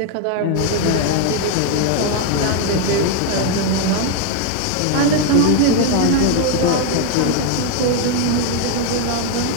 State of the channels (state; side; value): different; both; correlation 0.01